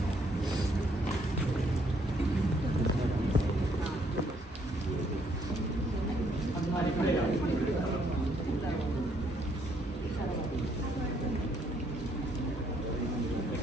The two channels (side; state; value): both; normal; correlation 0.69